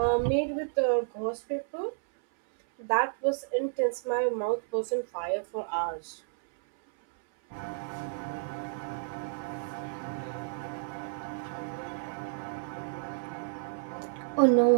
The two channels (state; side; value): silent; left; 57 dB below the other